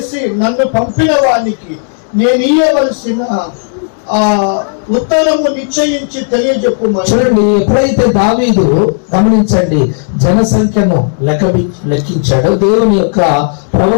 నన్ను పంపిన వానికి నేను ఇయ్యవలసిన ఉత్తరము నిశ్చయించి తెలియజెప్పమని. చూడండి, ఎప్పుడైతే దావీదు, గమనించండి, జనసంఖ్యను లెక్కించాడు, దేవుని యొక్క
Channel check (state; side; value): silent; right; digital silence